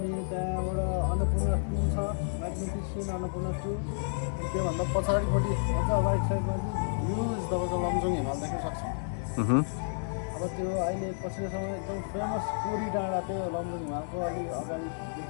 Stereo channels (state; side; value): silent; right; digital silence